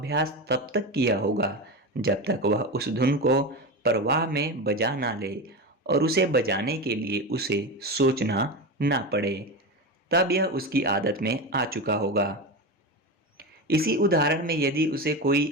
तब तक किया होगा जब तक वह उस धुन को प्रवाह में बजा ना ले और उसे बजाने के लिए उसे सोचना ना पड़े। तब यह उसकी आदत में आ चुका होगा। इसी उदाहरण में यदि उसे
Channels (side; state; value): both; normal; correlation 0.21